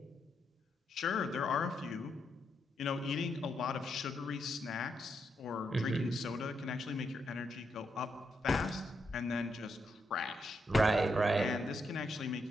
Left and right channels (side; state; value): both; normal; correlation 0.81